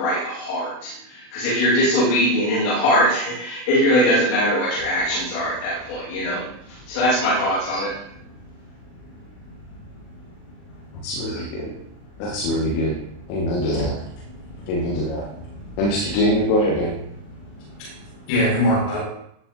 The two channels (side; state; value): right; late; 40 ms